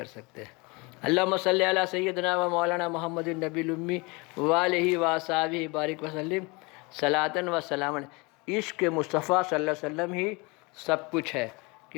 سکتے۔ اللہم صلی علی سیدنا و مولانا محمد النبی الامی والہ وصحبہ بارک وسلم صلاۃ و سلام علیہ۔ عشق مصطفیٰ صلی اللہ علیہ وسلم ہی سب کچھ ہے،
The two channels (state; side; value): quieter; right; 27.1 dB